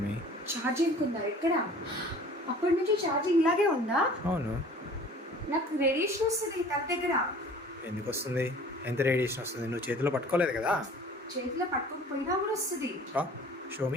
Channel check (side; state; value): both; normal; correlation 0.47